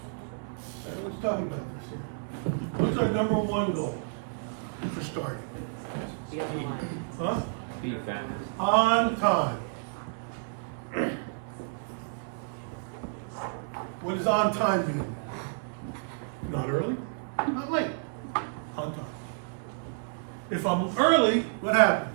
I was talking about this here. What's our number 1 goal for starting? Be on the line. Huh? Be found. On time. What does on time mean? Not early, not late, on time. If I'm early, what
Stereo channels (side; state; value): left; silent; 58 dB below the other